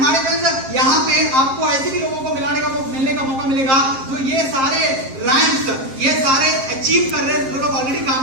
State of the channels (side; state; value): left; late; 7.6 ms